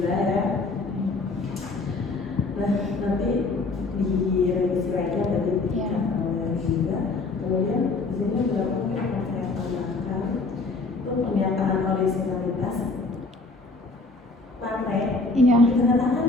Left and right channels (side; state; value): right; quieter; 3.5 dB